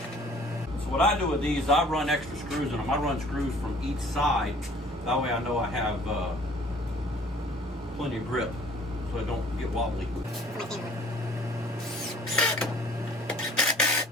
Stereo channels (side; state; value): both; normal; correlation 0.53